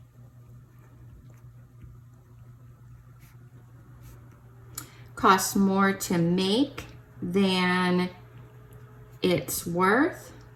Costs more to make than it's worth.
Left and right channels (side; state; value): both; identical; correlation 1.00